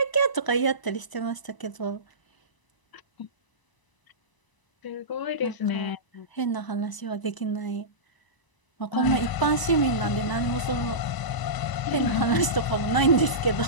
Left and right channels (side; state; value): right; late; 1.0 ms